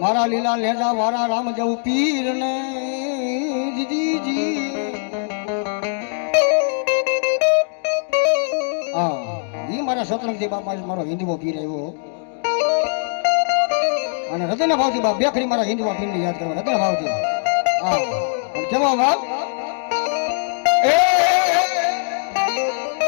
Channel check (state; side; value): silent; right; digital silence